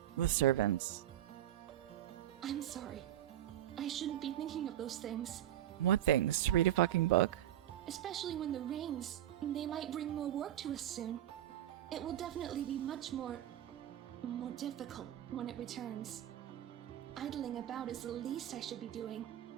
with servants. I'm sorry. I shouldn't be thinking of those things. What things? To read a fucking book? Especially when the rains, they might bring more work to us soon. It will definitely be much more difficult when it returns. Idling about is the least I should be doing.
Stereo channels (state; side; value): quieter; left; 12.2 dB